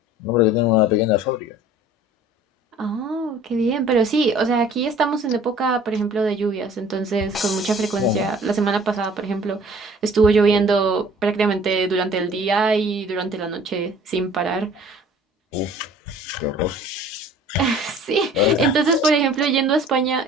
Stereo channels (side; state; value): both; normal; correlation 0.50